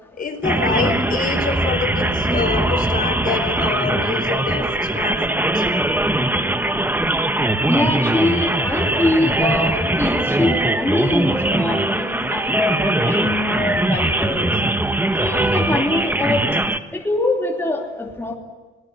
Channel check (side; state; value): both; normal; correlation 0.60